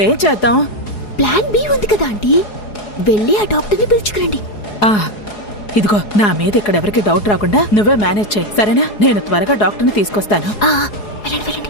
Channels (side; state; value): right; late; 4.8 ms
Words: చేద్దాం? ప్లాన్ బి ఉంది కదా ఆంటీ, వెళ్ళి ఆ డాక్టర్ని పిలుచుకురండి. ఇదిగో, నా మీద ఇక్కడ ఎవరికి డౌట్ రాకుండా నువ్వే మేనేజ్ చేయి, సరేనా? నేను త్వరగా డాక్టర్ని తీసుకొస్తాను. వెళ్ళండి వెళ్ళండి.